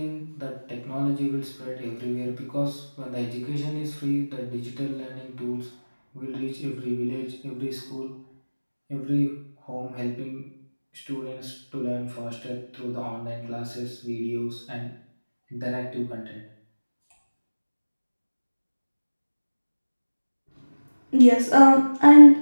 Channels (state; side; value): inverted; both; correlation -1.00